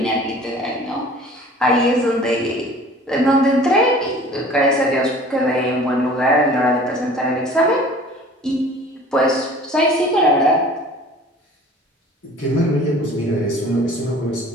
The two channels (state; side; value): normal; both; correlation 0.47